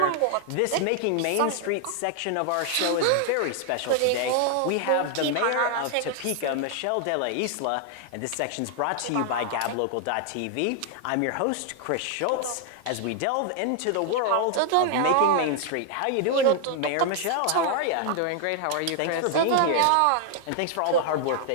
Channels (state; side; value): different; both; correlation 0.00